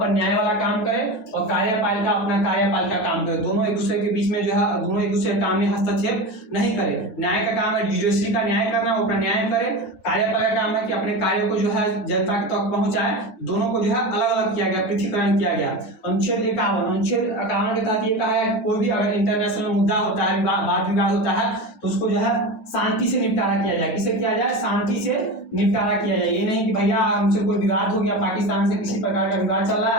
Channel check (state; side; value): late; right; 9.0 ms